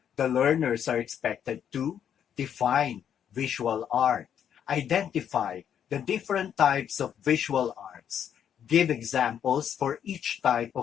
the learners are expected to define visual art, identify the different types of visual arts, give examples for each type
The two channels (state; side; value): quieter; right; 8.9 dB